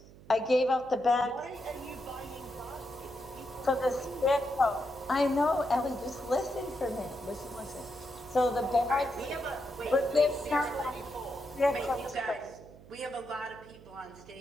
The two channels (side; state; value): right; noise; hum, 21 dB below the sound